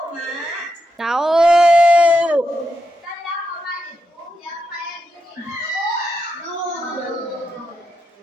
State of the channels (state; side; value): normal; both; correlation 0.85